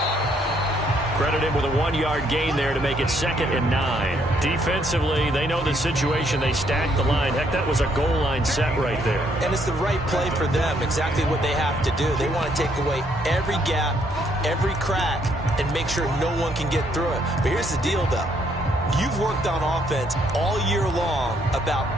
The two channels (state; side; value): normal; both; correlation 0.70